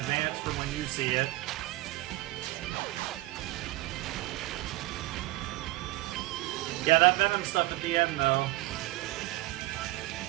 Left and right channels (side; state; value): left; quieter; 18.8 dB